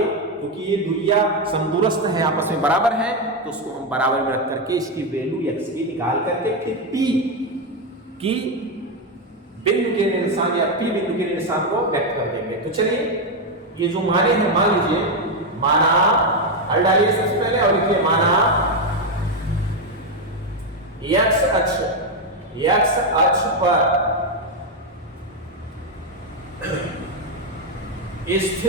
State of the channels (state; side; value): normal; both; correlation 0.06